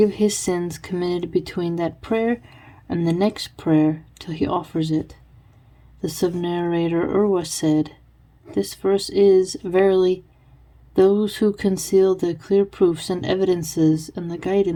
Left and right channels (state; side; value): identical; both; correlation 1.00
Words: his sins committed between that prayer and the next prayer till he offers it. The sub-narrator Urwa said, this verse is, verily, those who conceal the clear proofs and evidences and the